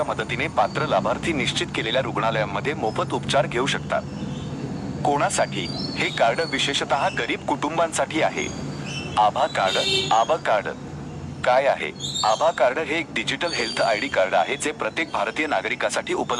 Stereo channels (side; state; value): both; identical; correlation 1.00